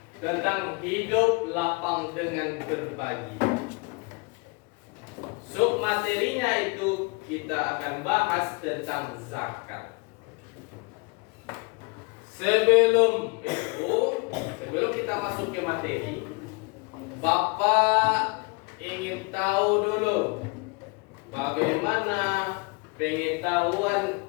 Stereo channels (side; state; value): right; quieter; 30.2 dB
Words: tentang hidup lapang dengan berbagi. Sub materinya itu kita akan bahas tentang zakat. Sebelum kita masuk ke materi, Bapak ingin tahu dulu bagaimana pengetahuan